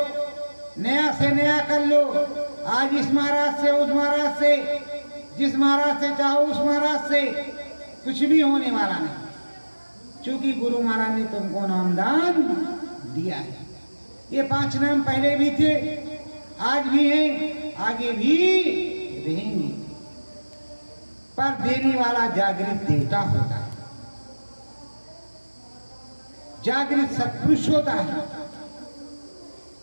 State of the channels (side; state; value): both; inverted; correlation -1.00